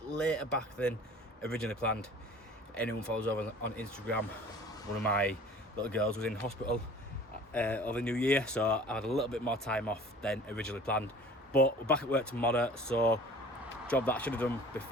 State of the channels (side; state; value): both; normal; correlation 0.46